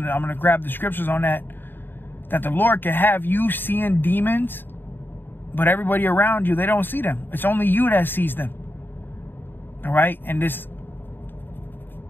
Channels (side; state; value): right; late; 0.096 ms